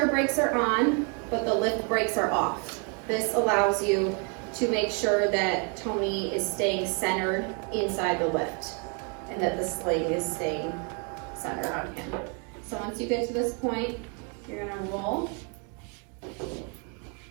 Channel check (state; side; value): quieter; left; 36.0 dB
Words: brakes are on, but the lift brakes are off. This allows you to make sure that Tony is staying centered inside the lift and that the sling is staying centered on him. So once you get to this point, you're gonna roll.